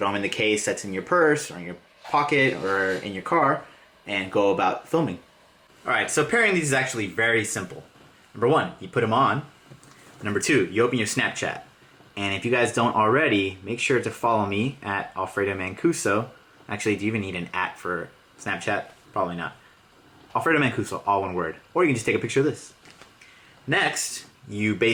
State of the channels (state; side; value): identical; both; correlation 1.00